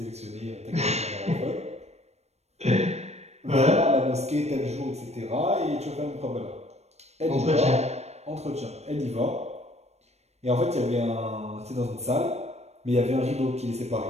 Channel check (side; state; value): left; late; 0.31 ms